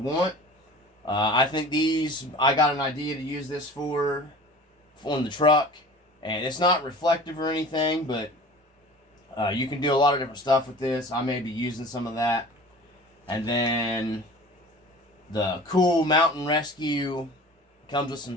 I think these, I got an idea to use this for on the truck. And it's not reflective or anything, but you can do a lot of different stuff with this. I may be using some of that. And then the cool mountain rescue comes with some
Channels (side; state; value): both; normal; correlation 0.41